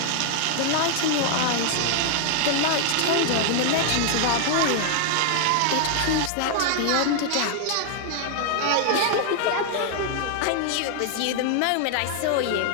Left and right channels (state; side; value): different; both; correlation 0.00